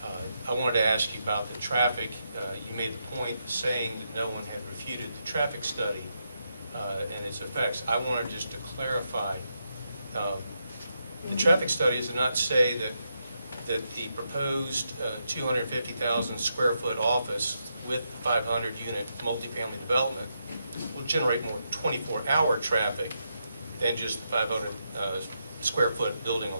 I wanted to ask you about the traffic. You made the point saying that no one had refuted the traffic study and its effects. I wanted just to clarify, the traffic studies do not say that the proposed 250,000 square foot office with 500 unit multifamily development will generate more 24-hour traffic than just the 500 square foot building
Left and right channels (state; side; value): inverted; both; correlation -0.83